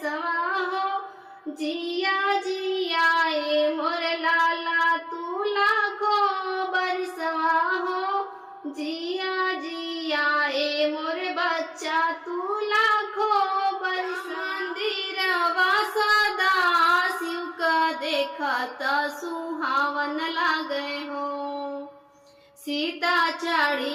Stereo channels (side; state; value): both; identical; correlation 1.00